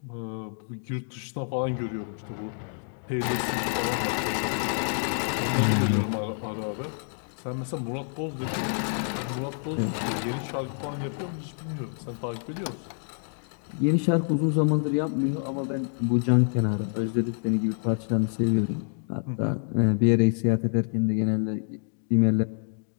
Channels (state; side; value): silent; right; 60 dB below the other